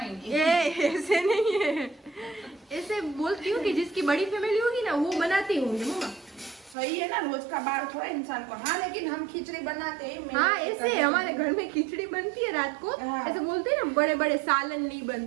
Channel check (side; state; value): left; drops out; at 6.8 s